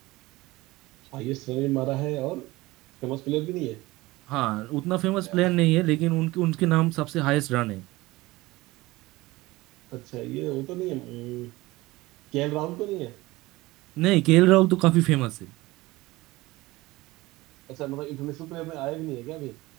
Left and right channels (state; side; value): quieter; left; 19.9 dB